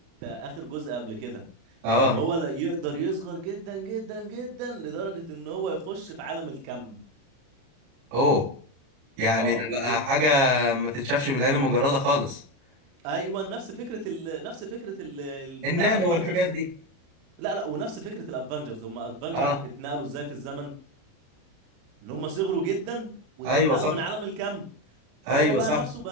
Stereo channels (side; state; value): left; late; 36 ms